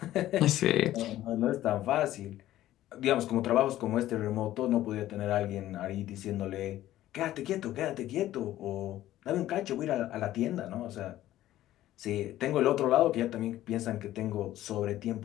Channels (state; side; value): quieter; right; 14.0 dB